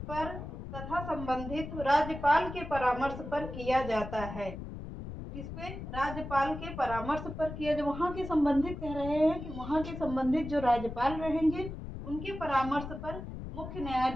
तथा संबंधित राज्यपाल के परामर्श पर किया जाता है। किसपे, राज्यपाल के परामर्श पर किया, जो वहाँ के संबंधित कह रहे हैं कि वहाँ के संबंधित जो राज्यपाल रहेंगे उनके परामर्श पर मुख्य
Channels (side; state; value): left; noise; rumble, 9 dB below the sound